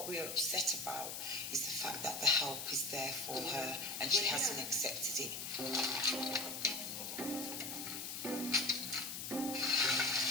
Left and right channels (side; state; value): left; noise; hiss, 5 dB below the sound